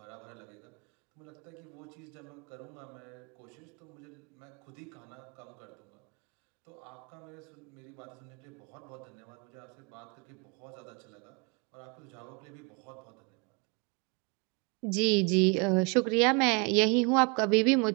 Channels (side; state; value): left; quieter; 32.2 dB